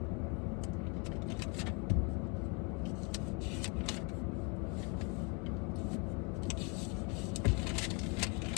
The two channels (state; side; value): quieter; right; 33.5 dB